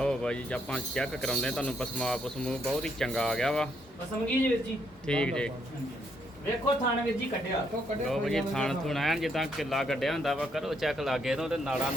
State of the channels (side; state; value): both; normal; correlation 0.73